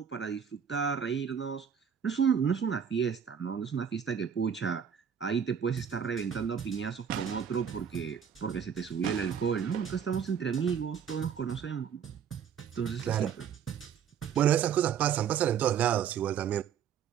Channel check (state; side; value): quieter; left; 7.8 dB